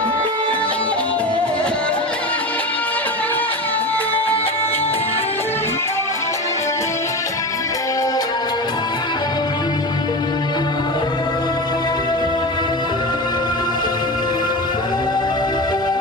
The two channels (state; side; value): normal; both; correlation 0.26